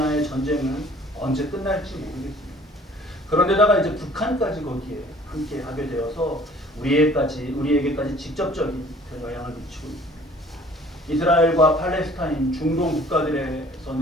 전쟁은 언제 끝날지 모르겠습니다. 그런데다가 이제 북한까지 거기에 함께 하게 되어서 우리에게까지 직접적인 영향을 미치고 있습니다. 이스라엘과 팔레스타인, 중동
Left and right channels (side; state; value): both; normal; correlation 0.53